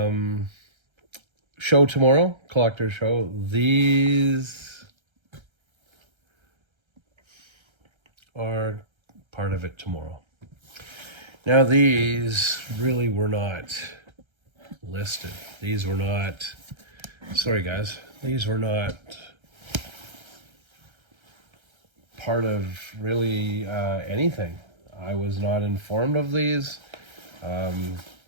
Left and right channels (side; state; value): left; late; 1.3 ms